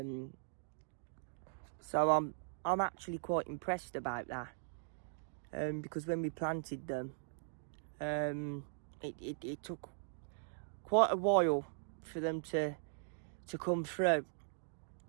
So I'm actually quite impressed about that, because when we planted them, it took quite a while for them to come through,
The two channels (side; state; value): left; silent; digital silence